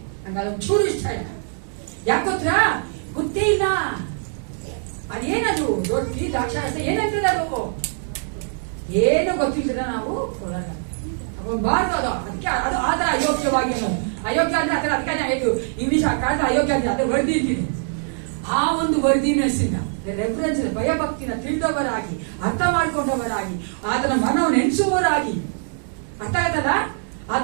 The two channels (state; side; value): silent; left; digital silence